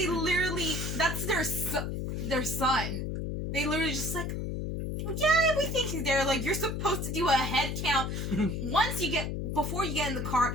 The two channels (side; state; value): left; noise; hum, 3 dB below the sound